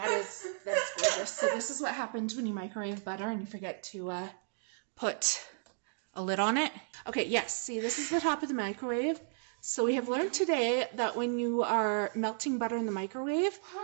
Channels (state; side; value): silent; left; digital silence